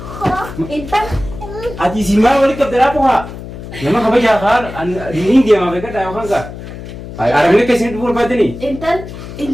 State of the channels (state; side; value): noise; left; hum, 12 dB below the sound